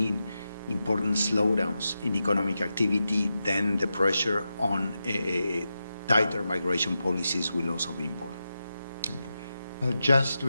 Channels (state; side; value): inverted; both; correlation -0.90